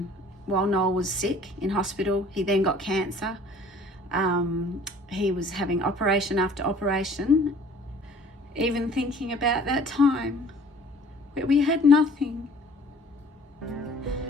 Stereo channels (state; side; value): normal; both; correlation 0.51